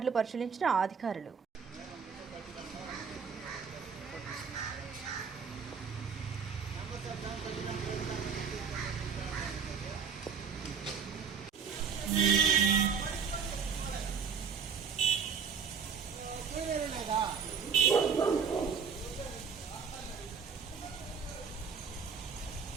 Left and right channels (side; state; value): left; quieter; 6.4 dB